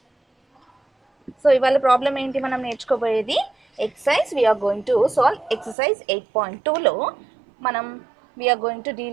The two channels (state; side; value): drops out; left; at 5.8 s